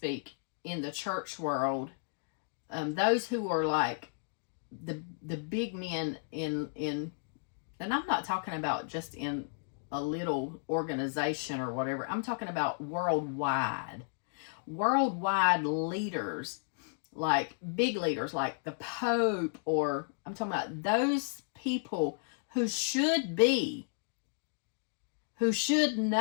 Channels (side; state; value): right; silent; digital silence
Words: in the church world, those who are like the big men in, and I'm not talking about just in a little organization or whatever. I'm talking about worldwide leaders, like big leaders like the Pope, or I'm talking about those people who should be, who should